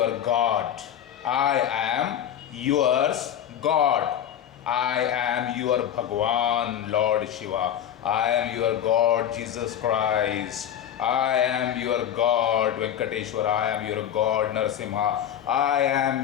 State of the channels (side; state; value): right; quieter; 10.0 dB